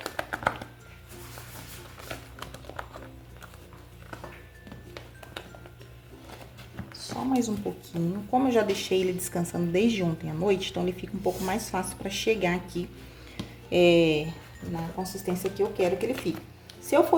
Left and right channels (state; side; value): identical; both; correlation 1.00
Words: Só mais um pouquinho. Como eu já deixei ele descansando desde ontem à noite, então ele fica um pouco mais fácil para chegar aqui na consistência que eu quero que ele fique. Se eu